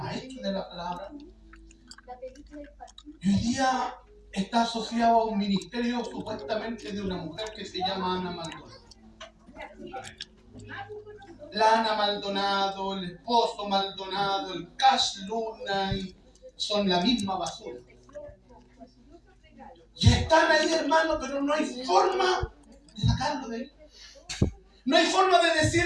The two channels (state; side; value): identical; both; correlation 1.00